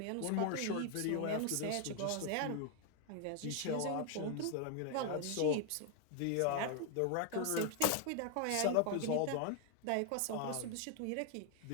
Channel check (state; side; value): different; both; correlation 0.00